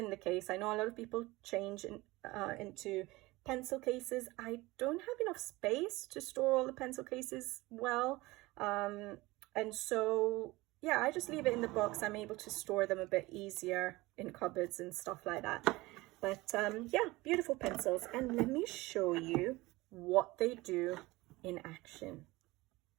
the case. I know a lot of people change into pencil cases. I don't have enough space to store all the pencil cases well, and so yeah, I just leave it in the box. I'm able to store them a bit easier in cupboards and stuff like that. But yeah, beautiful pencils. And let me show you what they do in action.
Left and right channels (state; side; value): quieter; left; 20.8 dB